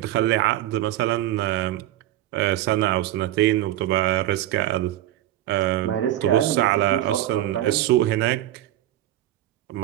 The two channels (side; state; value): left; quieter; 13.9 dB